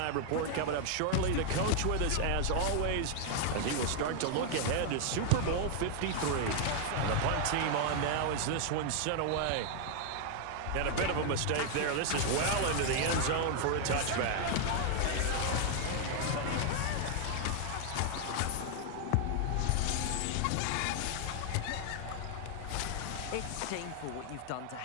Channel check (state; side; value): different; both; correlation 0.00